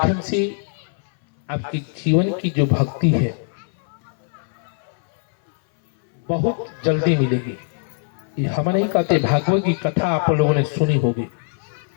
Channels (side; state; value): right; silent; 61 dB below the other